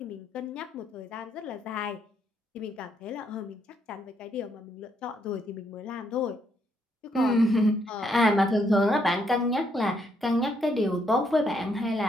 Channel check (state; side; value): normal; both; correlation 0.74